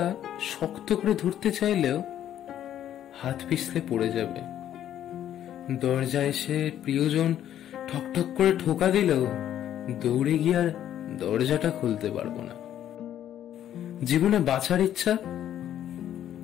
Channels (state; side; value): quieter; right; 11.0 dB